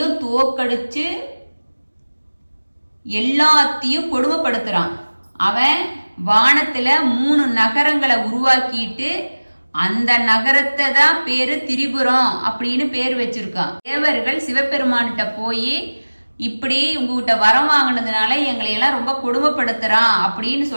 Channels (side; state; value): both; inverted; correlation -1.00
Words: தோக்கடிச்சு எல்லாத்தையும் கொடுமைப்படுத்துறான். அவன் வானத்துல 3 நகரங்களை உருவாக்கிட்டு அந்த நகரத்தை தான் பேரு திரிபுரம் அப்படின்னு பேர் வச்சிருக்கான். தேவர்கள் சிவபெருமான்கிட்ட போய் இப்படி உங்ககிட்ட வரம் வாங்கினதுனால எங்களை எல்லாம் ரொம்ப கொடுமைப்படுத்துறான் அப்படின்னு